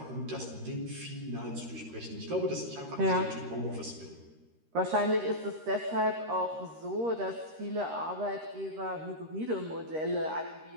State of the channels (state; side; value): late; left; 13 ms